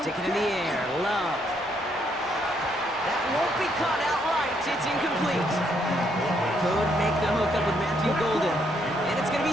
it in the air. Love. That won't be caught outright. It's incomplete. Could make the hook up with Matthew Golden. And it's going to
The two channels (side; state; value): both; normal; correlation 0.72